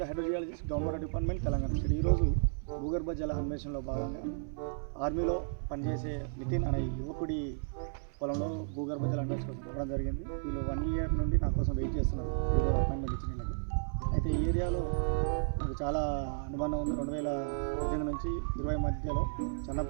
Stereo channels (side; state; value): left; silent; 56 dB below the other